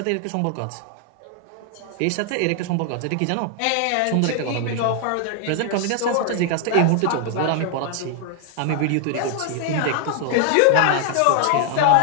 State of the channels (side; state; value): both; different; correlation 0.00